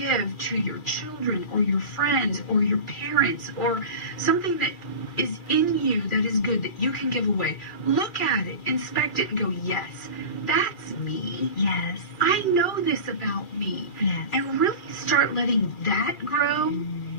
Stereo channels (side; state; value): right; late; 2.3 ms